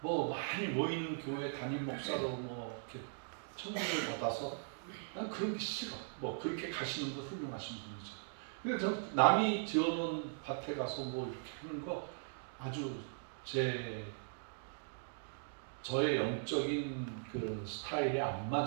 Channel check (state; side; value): silent; left; digital silence